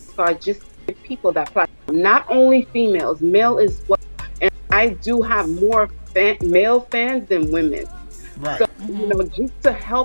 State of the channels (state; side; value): inverted; both; correlation -1.00